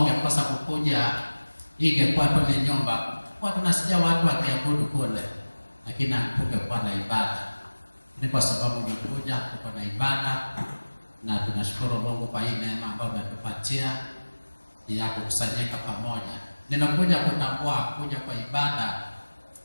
kukuja, ingekuwa tu ni nyumba, kwa tunasikia watu wakiabudu kule, lakini hatungekuwa na ibada. Ni kwa sababu umekuja, tuko na ibada, na tunashukuru Mungu kwa hii neema ambayo ametupatia ya kukusanyika pamoja. Ninakuja kutambua kuja kwa ibada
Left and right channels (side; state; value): both; inverted; correlation -1.00